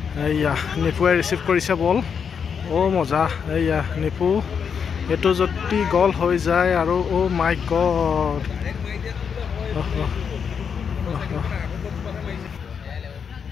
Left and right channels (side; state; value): right; quieter; 6.8 dB